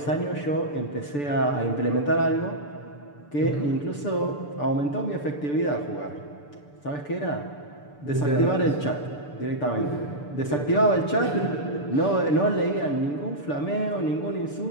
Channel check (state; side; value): late; right; 6.8 ms